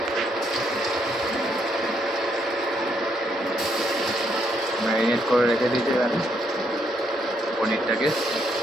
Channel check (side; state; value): both; normal; correlation 0.74